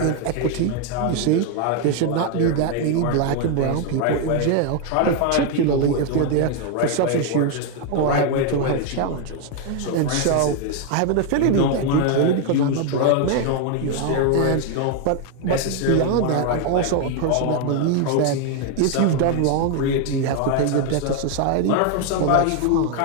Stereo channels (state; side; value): different; both; correlation 0.01